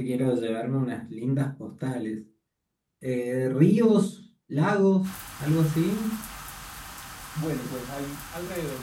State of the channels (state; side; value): identical; both; correlation 1.00